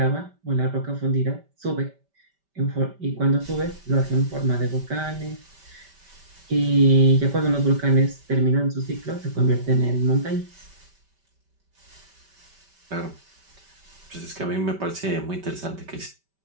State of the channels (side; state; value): left; late; 5.1 ms